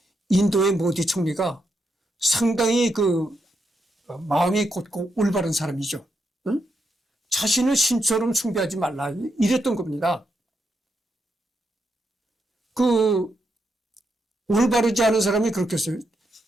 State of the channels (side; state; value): both; normal; correlation 0.82